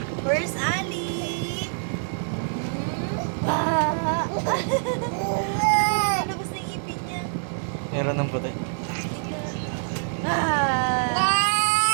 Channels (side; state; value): left; silent; 56 dB below the other